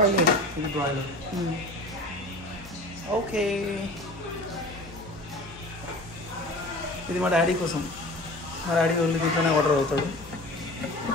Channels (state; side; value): normal; both; correlation 0.38